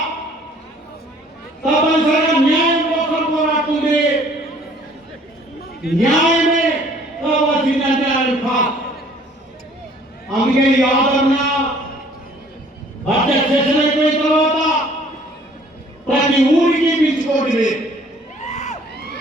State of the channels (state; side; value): normal; both; correlation 0.56